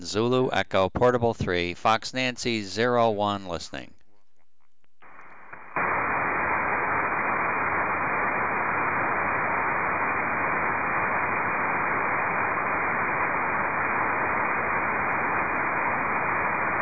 Zulu Echo Portable 3, Fox Nancy 01 listening.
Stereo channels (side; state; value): both; identical; correlation 1.00